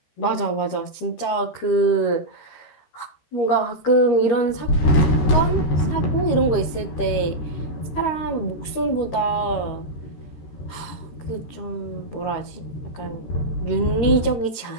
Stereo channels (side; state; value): right; late; 13 ms